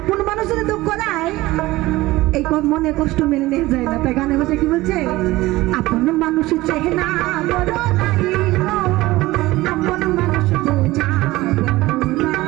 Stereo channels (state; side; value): quieter; left; 18.6 dB